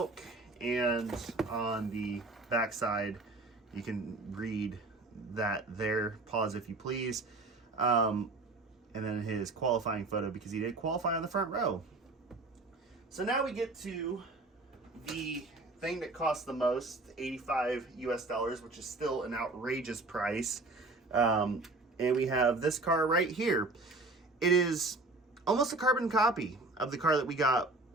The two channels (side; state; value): left; quieter; 3.2 dB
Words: and on the back side, you can read that there. Pause if you please. And then his qualifying photo, because he did qualify on the front row. So now we get to the thing that costs the most, $85 US, which is still an outrageous price. And we have this car right here. It is almost a carbon copy of the car that we got